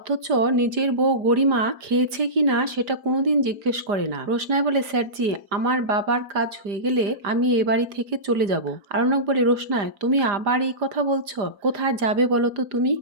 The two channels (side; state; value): left; late; 5.0 ms